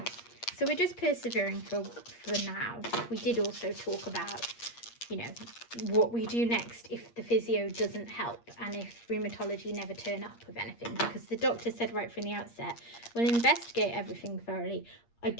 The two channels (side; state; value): right; late; 8.5 ms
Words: So we're just persevering for now. We did also talk about, you know, what we do next if the physio doesn't help and if rheumatology never turn up with anything, because the doctor said right from the outset, we'll investigate everything thoroughly. I